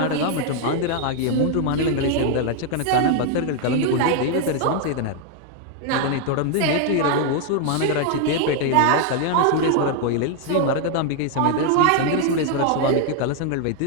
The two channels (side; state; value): both; different; correlation 0.00